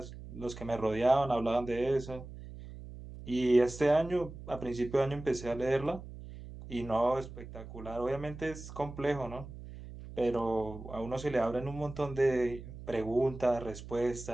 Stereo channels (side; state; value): right; noise; hum, 13 dB below the sound